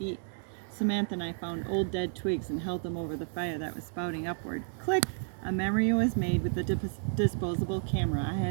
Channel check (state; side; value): silent; left; 57 dB below the other